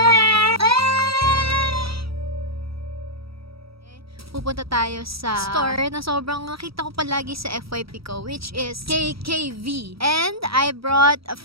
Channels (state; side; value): late; left; 0.76 ms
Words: Pupunta tayo sa store na sobrang nakita ko palagi sa FYP ko, which is KKV. And I brought a